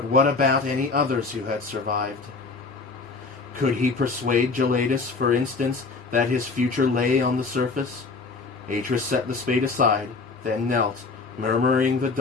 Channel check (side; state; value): right; quieter; 4.1 dB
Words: what about any others who had survived? Could he persuade Gelaius, for instance, that his future lay on the surface? Atris set the spade aside, then knelt, murmuring the